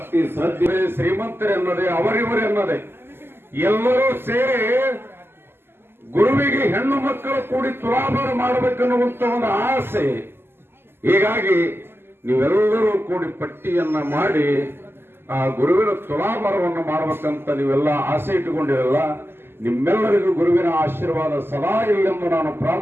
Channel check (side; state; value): left; late; 0.11 ms